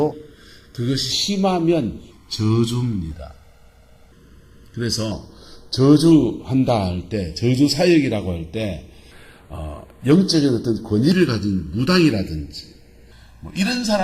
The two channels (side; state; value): both; identical; correlation 1.00